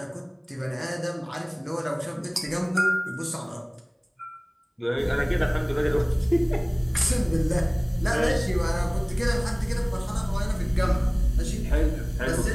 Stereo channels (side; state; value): both; identical; correlation 1.00